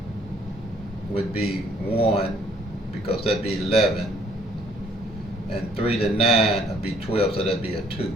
would be 1, because that'd be 11. And 3 to 9 would be 12, so that'd be a 2.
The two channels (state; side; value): normal; both; correlation 0.62